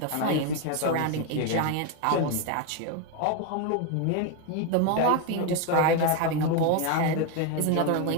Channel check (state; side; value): different; both; correlation 0.01